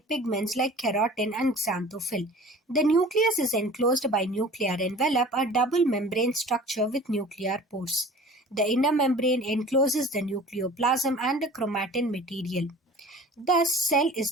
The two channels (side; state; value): both; normal; correlation 0.43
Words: like keratin and xanthophyll. The nucleus is enclosed by nuclear envelope, a double membrane structure with nuclear pores. The inner membrane encloses the nucleoplasm and the chromatin material. Thus, cell is